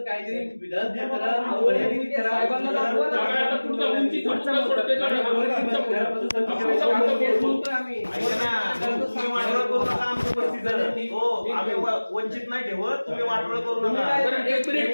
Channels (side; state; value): both; inverted; correlation -1.00